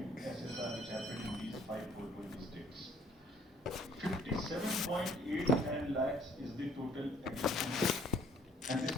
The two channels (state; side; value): normal; both; correlation 0.60